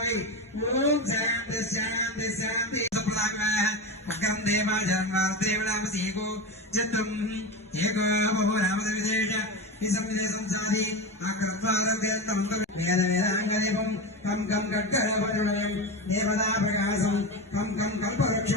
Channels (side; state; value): both; normal; correlation 0.21